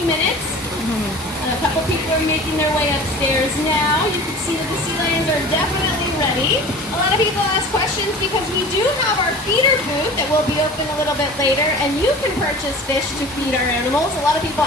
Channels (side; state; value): both; normal; correlation 0.40